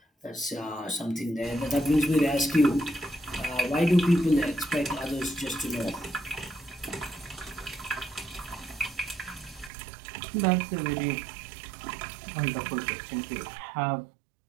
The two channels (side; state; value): left; drops out; at 9.7 s